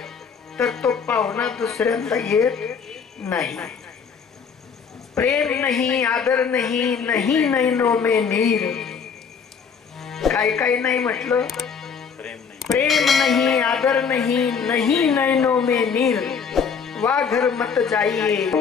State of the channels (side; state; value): right; quieter; 6.3 dB